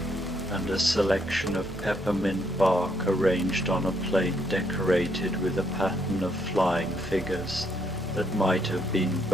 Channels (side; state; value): both; normal; correlation 0.73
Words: and a selection of peppermint bark arranged on a plate decorated with a pattern of flying figures that might have been